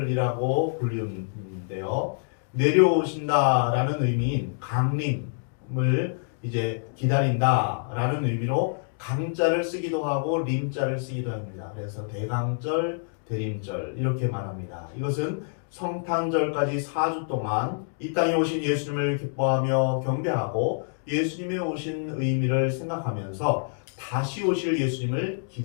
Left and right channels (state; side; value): silent; right; digital silence